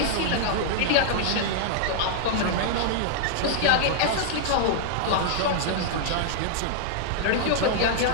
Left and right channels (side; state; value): both; different; correlation -0.01